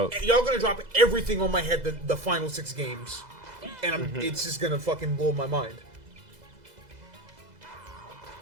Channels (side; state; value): left; late; 2.0 ms